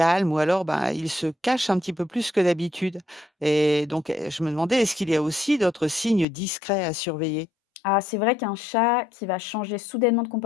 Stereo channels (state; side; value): drops out; right; at 6.2 s